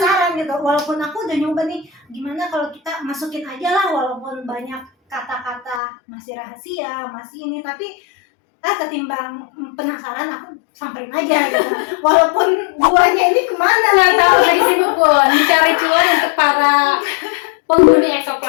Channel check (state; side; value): drops out; right; at 5.8 s